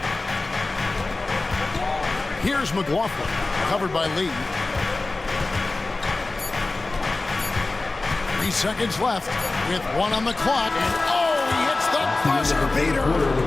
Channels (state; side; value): quieter; right; 3.2 dB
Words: Here's McLaughlin, covered by Lee. 3 seconds left with 1 on the clock. And he hits the buzzer beater.